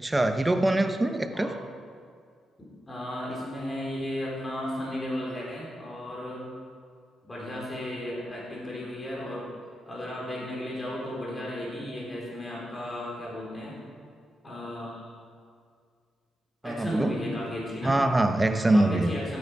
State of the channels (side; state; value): both; normal; correlation 0.91